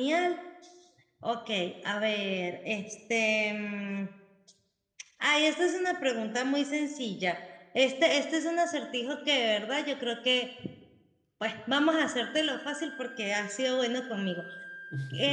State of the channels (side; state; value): both; identical; correlation 1.00